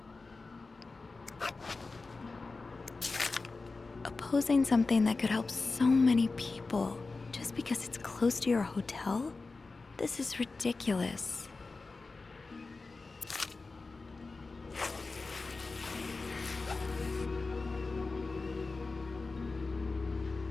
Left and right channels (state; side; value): quieter; right; 3.8 dB